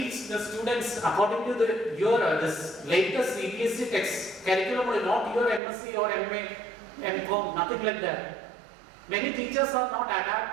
the students according to your this latest CBSE text curriculum, not your MSc or MA, MCom, nothing like that. Many teachers are not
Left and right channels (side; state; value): left; drops out; at 5.6 s